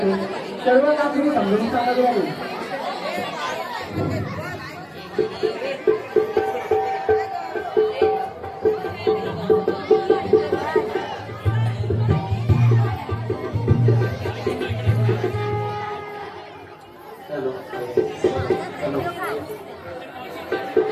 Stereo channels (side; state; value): both; identical; correlation 1.00